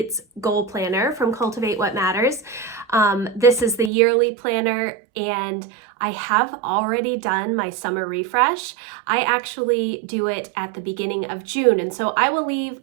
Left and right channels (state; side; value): drops out; left; at 3.9 s